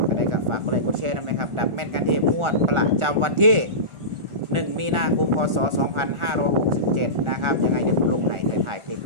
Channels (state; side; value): late; left; 1.4 ms